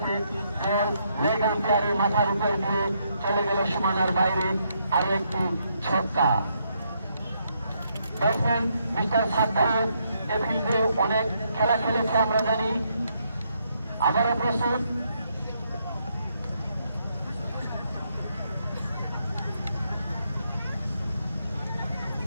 লেগ আম্পায়ারের মাথার উপর দিয়ে চলে গেল সীমানার বাইরে। আরো একটি ছক্কা। ব্যাটসম্যান মিস্টার সাদ্দাম এ ফিল্ডে অনেক খেলা খেলেছে আমরা জানি। আবারও প্রস্তুত।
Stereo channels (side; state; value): both; inverted; correlation -0.75